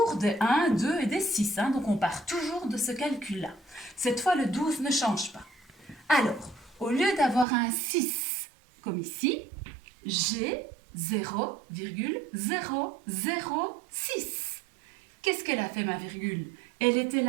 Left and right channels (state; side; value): drops out; left; at 7.5 s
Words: des 1, 2 et des 6. Hein, donc on part toujours de ce calcul-là. Cette fois, le 12 ne change pas. Alors, au lieu d'avoir un 6 comme ici, j'ai 0,006. Qu'est-ce qu'elle a fait, ma virgule? Elle était